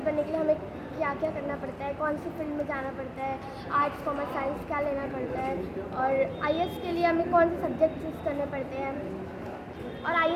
बनने के लिए हमें क्या क्या करना पड़ता है, कौन सी फील्ड में जाना पड़ता है, आर्ट्स कॉमर्स साइंस क्या लेना पड़ता है, और IAS के लिए हमें कौन से सब्जेक्ट चूज़ करने पड़ते हैं। और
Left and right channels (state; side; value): identical; both; correlation 1.00